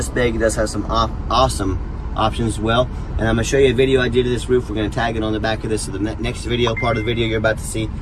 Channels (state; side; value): identical; both; correlation 1.00